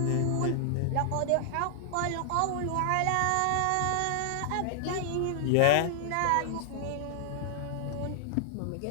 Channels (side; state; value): both; different; correlation -0.01